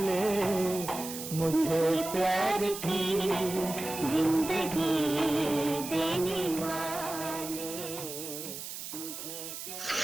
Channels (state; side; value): noise; right; hiss, 8 dB below the sound